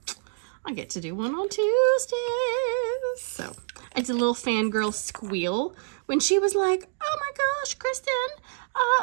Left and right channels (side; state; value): left; silent; 60 dB below the other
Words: I get to do one on Tuesdays. So I did a little fangirl squeal when she was like, "Oh my gosh, Kristen,